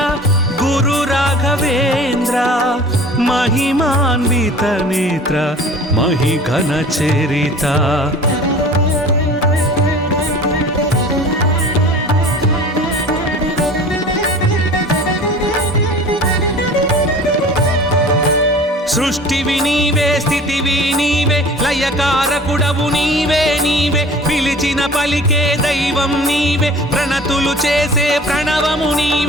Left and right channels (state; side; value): normal; both; correlation 0.43